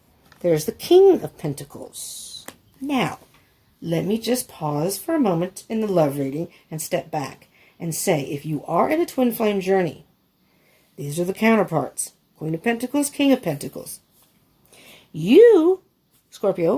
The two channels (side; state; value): both; identical; correlation 1.00